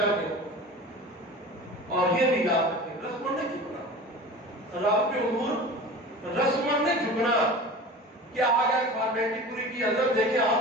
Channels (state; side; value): normal; both; correlation 0.36